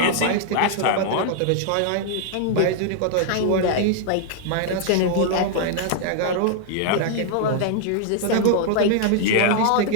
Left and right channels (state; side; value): different; both; correlation -0.01